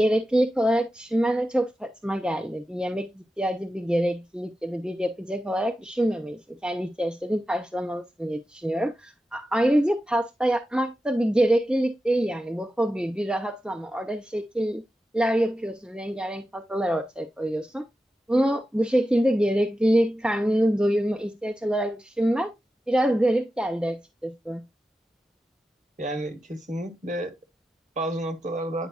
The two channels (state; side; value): normal; both; correlation 0.91